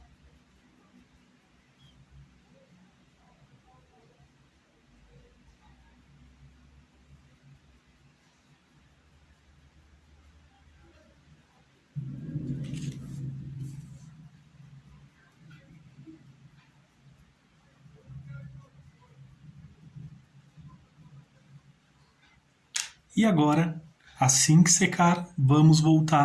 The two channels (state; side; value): identical; both; correlation 1.00